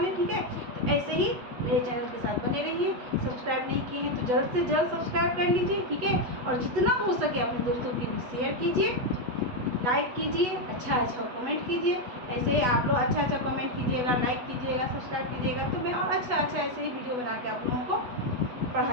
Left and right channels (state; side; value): late; left; 8.1 ms